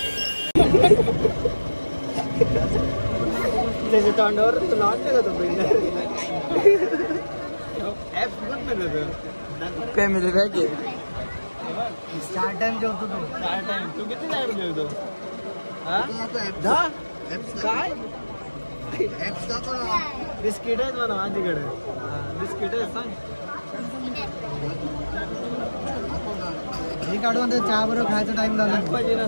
त्याच्या तोंडावर तुला वाटतं का तो फॅमिली पॅक आहे. स्टार टाइम जेवतो तू. स्टार टाइम तू किती टाइम जेवतो? काय बिस्किट आहेत म्हणा माझ्याकडे. बिस्किट आहेत सांग हे काढून चहा बरोबर खायचा टाइम झाला पाहिजे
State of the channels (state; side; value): inverted; both; correlation -1.00